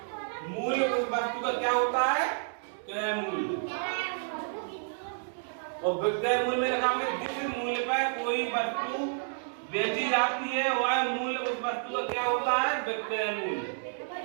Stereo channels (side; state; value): left; silent; digital silence